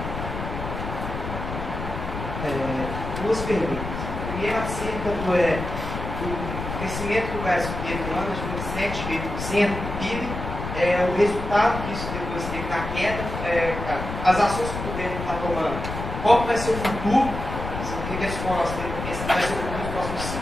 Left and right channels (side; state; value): left; noise; rumble, 6 dB below the sound